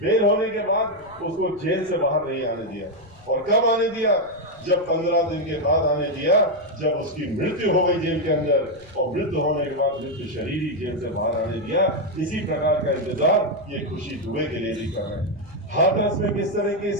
बेल होने के बाद उसको जेल से बाहर नहीं आने दिया। और कब आने दिया? जब 15 दिन के बाद आने दिया, जब उसकी मृत्यु हो गई जेल के अंदर, और मृत्यु होने के बाद मृत्यु शरीर ही जेल से बाहर आने दिया। इसी प्रकार का इंतजार ये खुशी दुबे के लिए भी कर रहे हैं। हाथरस में किस तरीके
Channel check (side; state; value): left; noise; rumble, 25 dB below the sound